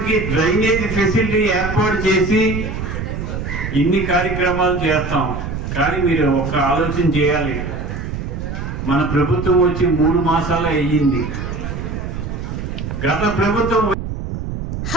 డ్రైనేజ్ ఫెసిలిటీ ఏర్పాటు చేసి ఇన్ని కార్యక్రమాలు చేస్తాం. కానీ మీరు ఒక ఆలోచన చేయాలి, మన ప్రభుత్వం వచ్చి 3 మాసాలు అయ్యింది. గత ప్రభుత్వం.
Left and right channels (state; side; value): noise; right; rumble, 5 dB below the sound